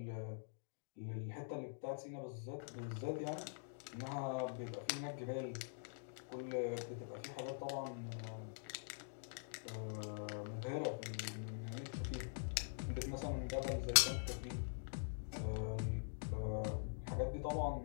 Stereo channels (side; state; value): right; silent; digital silence